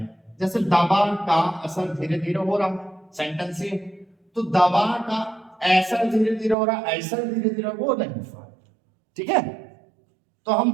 जैसे दबा का असर धीरे धीरे हो रहा, सेंटेंस ये, तो दबा का ऐसा धीरे धीरे हो रहा, ऐसा धीरे धीरे वो नहीं हो रहा। ठीक है, तो हम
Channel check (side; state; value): left; drops out; at 6.6 s